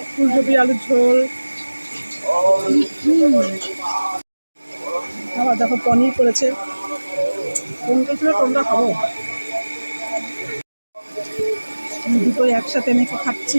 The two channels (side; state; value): both; inverted; correlation -1.00